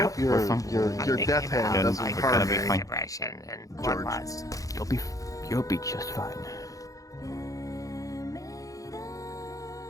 your death hand doesn't We're harm gonna me. be fine. George. You'll be just fine.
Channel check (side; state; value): right; late; 0.17 ms